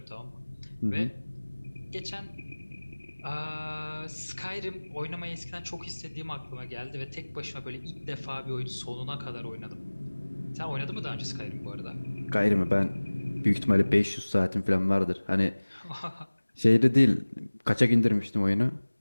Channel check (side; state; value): both; inverted; correlation -1.00